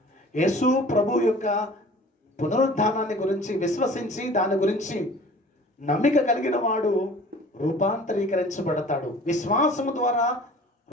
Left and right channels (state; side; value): normal; both; correlation 0.46